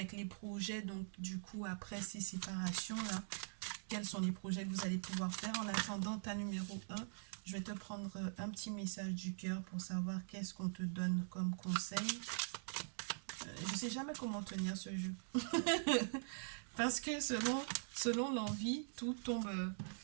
les projets. Donc du coup, après ces séparations-là, quels sont les projets que vous allez pouvoir faire. En attendant ta numéro 1, je vais te prendre un petit message du cœur pour savoir qu'est-ce qu'on te donne comme conseil. Je ne sais jamais comment tenir ce jeu. Parce que selon l'envie, tout tombe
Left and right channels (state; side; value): silent; left; digital silence